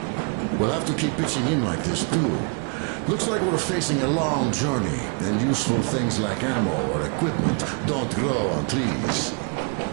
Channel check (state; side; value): quieter; left; 37.6 dB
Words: We'll have to keep pitching in like this too. Looks like we're facing a long journey, and useful things like ammo or equipment don't grow on trees.